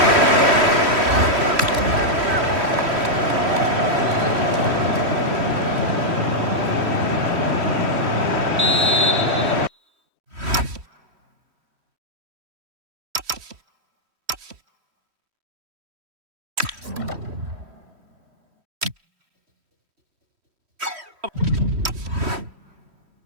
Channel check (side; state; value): left; late; 3.1 ms